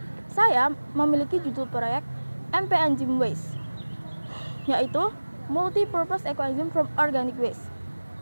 Saya memiliki judul proyek MP-Enzyme Waste, yaitu Multi-Purpose Eco-Enzyme from Organic Waste,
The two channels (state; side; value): inverted; both; correlation -1.00